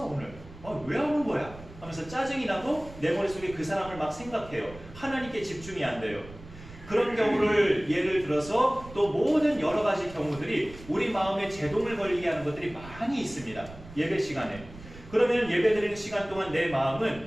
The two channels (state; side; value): noise; right; rumble, 17 dB below the sound